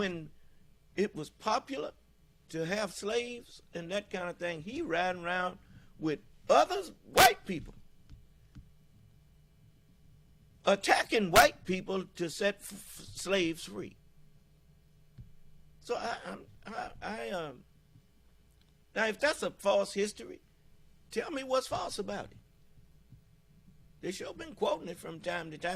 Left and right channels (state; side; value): identical; both; correlation 1.00